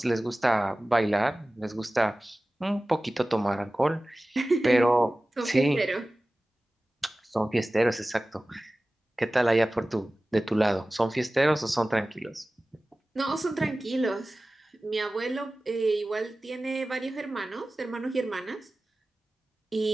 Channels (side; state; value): both; normal; correlation 0.97